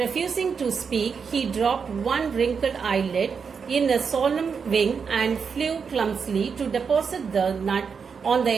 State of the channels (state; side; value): quieter; left; 6.0 dB